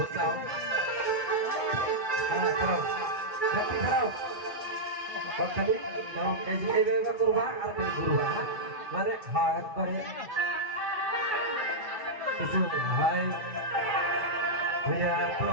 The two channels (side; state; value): left; late; 2.3 ms